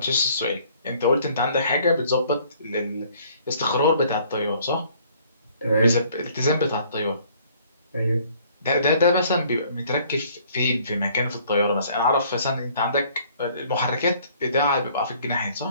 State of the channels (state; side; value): inverted; both; correlation -0.59